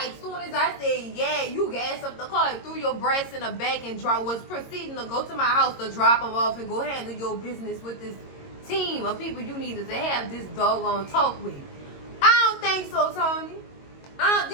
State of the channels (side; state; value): right; late; 22 ms